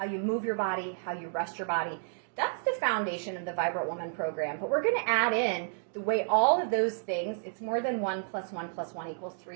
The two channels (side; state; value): left; silent; digital silence